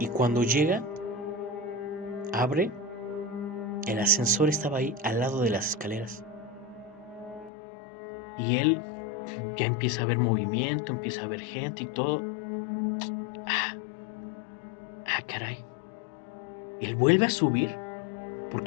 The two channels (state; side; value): drops out; right; at 7.5 s